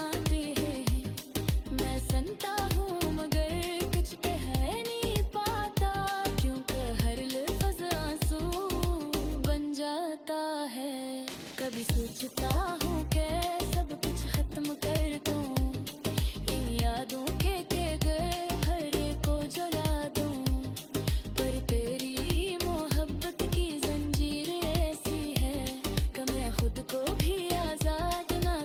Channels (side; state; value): both; identical; correlation 1.00